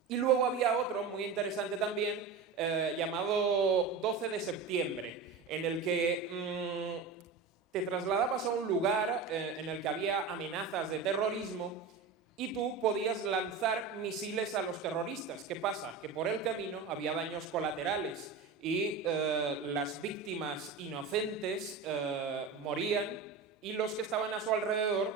Y luego había otro muy interesante también, llamado 12 de septiembre, en el que te trasladabas a un lugar en el que había amenazas de terrorismo y tú podías lanzar misiles a los terroristas. ¿Qué pasa? Que por el camino había daños colaterales y las víctimas inocentes morían y los que estaban a su alrededor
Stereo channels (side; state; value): left; quieter; 5.0 dB